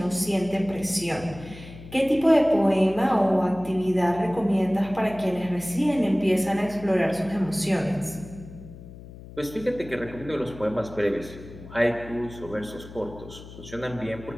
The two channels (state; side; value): noise; left; hum, 16 dB below the sound